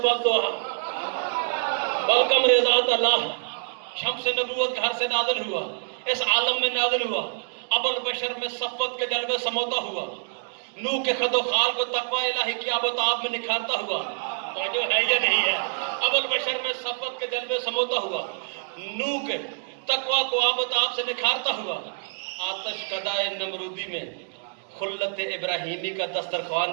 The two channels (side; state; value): left; silent; digital silence